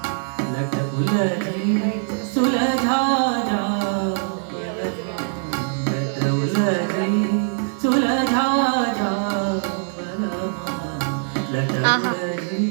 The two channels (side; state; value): left; silent; digital silence